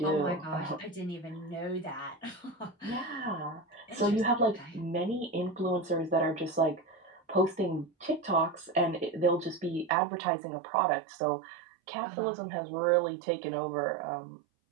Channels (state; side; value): drops out; left; at 9.9 s